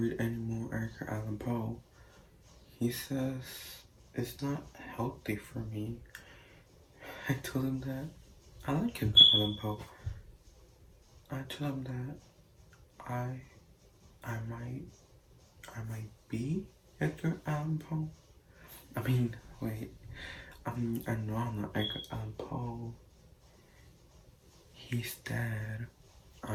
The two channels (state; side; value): identical; both; correlation 1.00